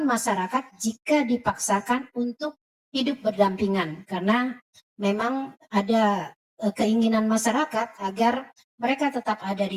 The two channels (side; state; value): both; identical; correlation 1.00